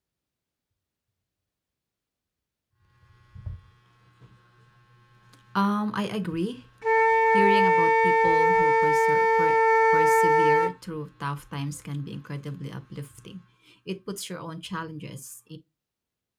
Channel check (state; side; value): identical; both; correlation 1.00